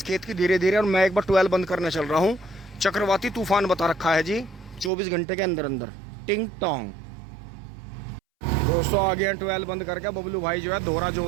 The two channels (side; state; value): left; drops out; at 4.9 s